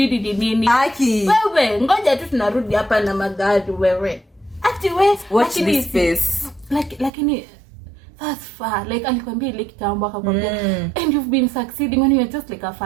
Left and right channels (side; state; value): left; drops out; at 7.1 s